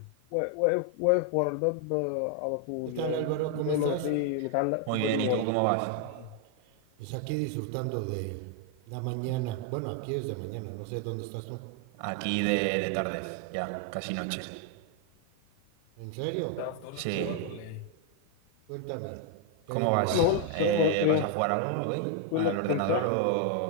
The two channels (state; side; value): different; both; correlation 0.00